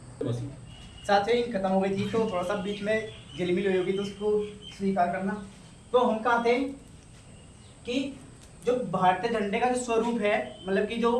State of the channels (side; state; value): both; identical; correlation 1.00